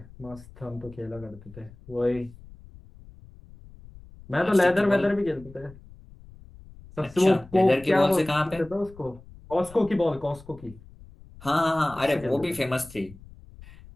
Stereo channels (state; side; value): noise; left; rumble, 20 dB below the sound